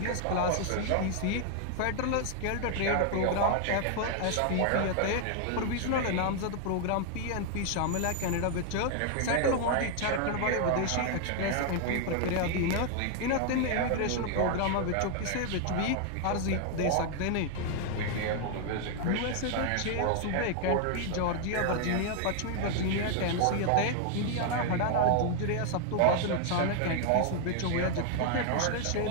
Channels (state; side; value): different; both; correlation 0.00